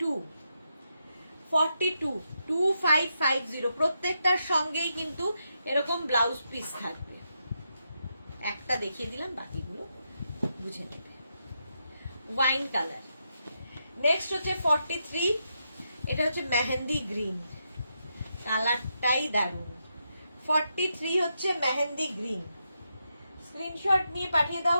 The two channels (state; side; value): inverted; both; correlation -0.83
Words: 2550। প্রত্যেকটার সঙ্গেই কিন্তু এরকম ব্লাউজ পিস থাকবে। একটা দেখিয়ে দিলাম, বাকিগুলো বুঝে নেবে। Wine colour. নেক্সট হচ্ছে 43, এটা হচ্ছে মেহেন্দি গ্রিন, কালারটাই দারুণ। 43 হচ্ছে মেহেন্দি গ্রিন। স্ক্রিনশট নিয়ে পাঠিয়ে দাও,